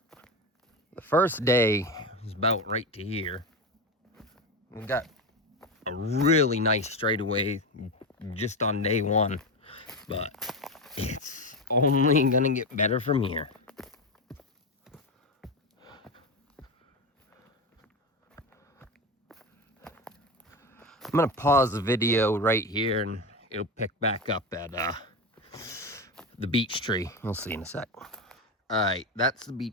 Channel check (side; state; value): both; normal; correlation 0.18